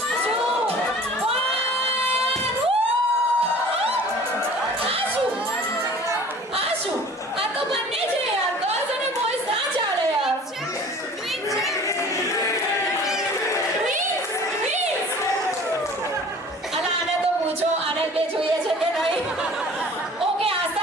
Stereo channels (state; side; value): normal; both; correlation 0.46